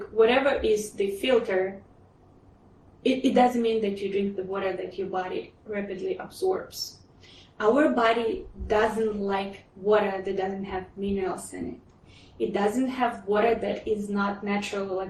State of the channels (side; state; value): both; identical; correlation 1.00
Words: whatever is the filter, it doesn't mean that you drink the water that your body rapidly absorbs. Our body doesn't like water that doesn't have minerals in it. It doesn't have water that is not natural,